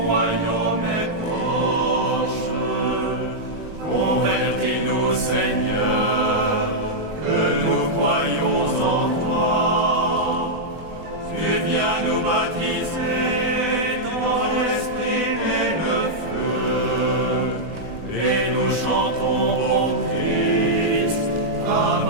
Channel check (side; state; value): left; late; 20 ms